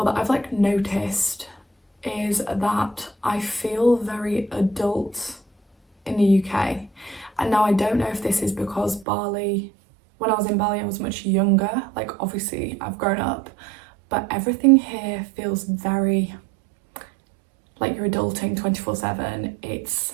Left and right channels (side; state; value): left; drops out; at 9.1 s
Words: that I've like noticed, is that I feel very adult in the UK. And now I don't know if this is because Bali, when I was in Bali, I was much younger. Like obviously I've grown up, but everything here feels very like you're adulting 24/7. It's